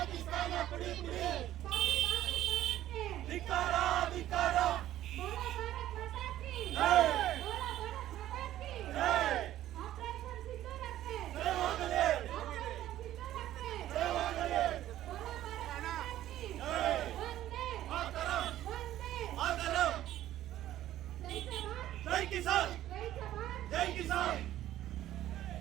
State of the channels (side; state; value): left; quieter; 13.2 dB